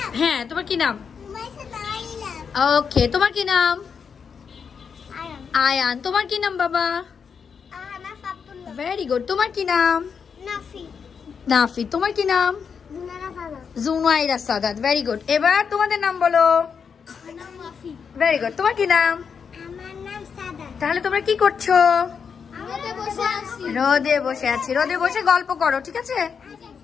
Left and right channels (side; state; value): right; quieter; 6.4 dB